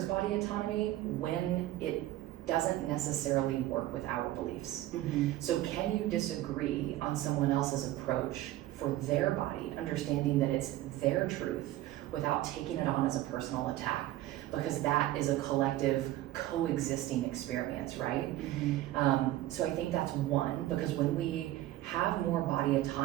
body autonomy when it doesn't necessarily work with our beliefs. Mm-hmm. So can you disagree on someone else's approach for their body, understanding that it's their truth without taking it on as a personal attack? Because that is a collective coexisting experience, right? Mm-hmm. So I think that's one, because when we have more body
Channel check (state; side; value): quieter; left; 15.2 dB